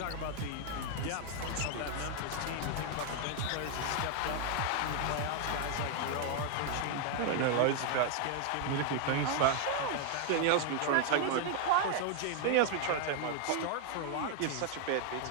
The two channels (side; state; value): both; different; correlation 0.00